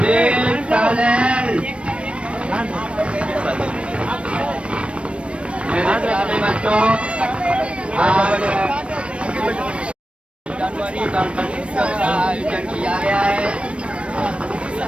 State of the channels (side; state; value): left; late; 0.060 ms